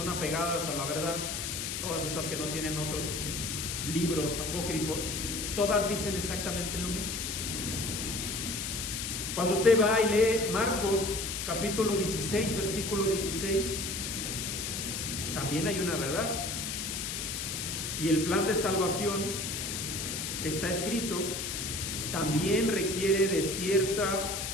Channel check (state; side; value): noise; left; hiss, 3 dB below the sound